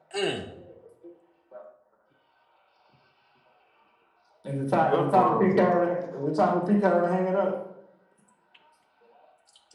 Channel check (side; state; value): both; identical; correlation 1.00